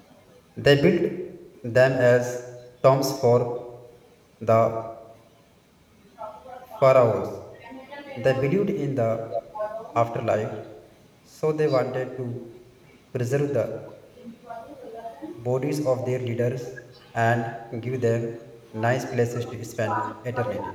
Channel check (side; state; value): both; identical; correlation 1.00